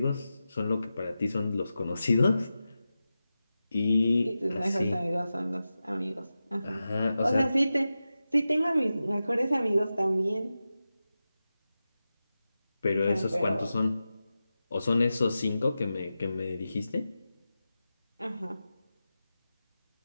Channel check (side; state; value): both; inverted; correlation -0.93